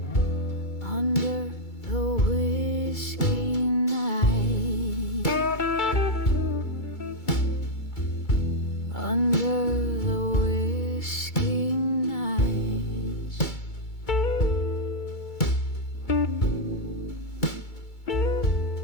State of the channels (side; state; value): right; late; 2.3 ms